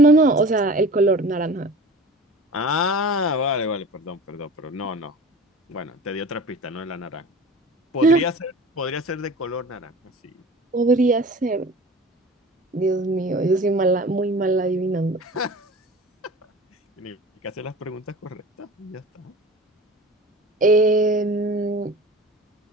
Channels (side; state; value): both; normal; correlation 0.39